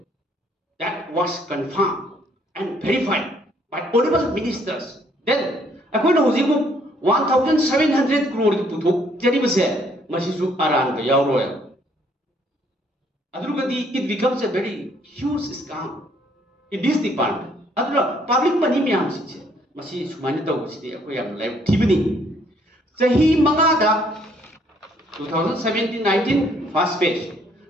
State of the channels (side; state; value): both; normal; correlation 0.65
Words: that was confirmed and verified by honorable ministers. Then, according to Huzimu, 1,700 crore puthok jari base masisu aran ka yawroya. Adrugadi it becomes a very huge scam in this department. Adra public money miyam siche masi sumani taw sidi akoyam live tibni. Sahi mangada 2017-19 first phase,